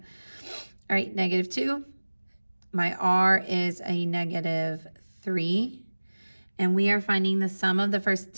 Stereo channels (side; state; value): both; inverted; correlation -1.00